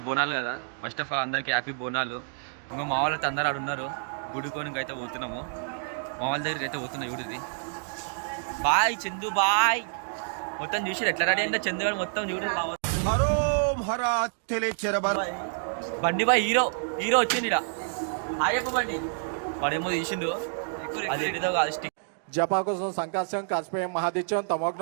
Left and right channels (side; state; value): left; silent; digital silence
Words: బోనాలు కదా. ఫస్ట్ ఆఫ్ ఆల్ అందరికీ హ్యాపీ బోనాలు. ఇంకా మా వాళ్ళతో అందరూ ఆడు ఉన్నారు. గుడికోనికి అయితే పోతున్నాము. మా వాళ్ళ దగ్గరికి అయితే పోతున్నాం. చూడది బాయ్ చందు బాయ్. మొత్తం చూసి ఎట్లా రెడీ అంటే చందు గారు మొత్తం చూడండి. బండి బాయ్ హీరో హీరో వచ్చింది ఇక్కడ. ఆయప్ప బండి వాడేమో తీసిండు. అదేంటిదో కాదు స్టిక్ జపాకుసం సంకాశం కాస్పేయం మహాదిత్యం